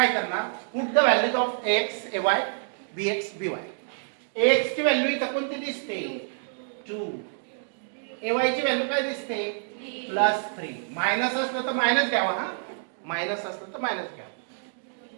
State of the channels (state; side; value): silent; left; digital silence